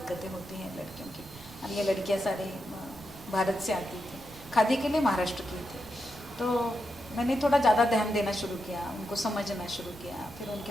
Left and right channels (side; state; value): right; noise; rumble, 20 dB below the sound